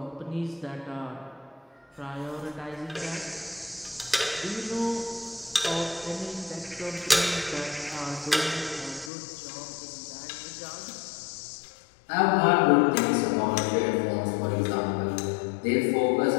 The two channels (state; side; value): drops out; right; at 9.1 s